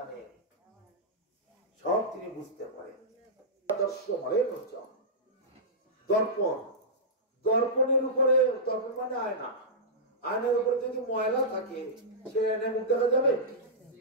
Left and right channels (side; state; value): both; normal; correlation -0.14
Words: সব তিনি বুঝতে পারেন। দর্পণ, দর্পণের উপরে, দর্পণ মানে আয়না, আয়নার উপরে যদি ময়লা থাকে, সে আয়নায় মুখ দেখা যাবে?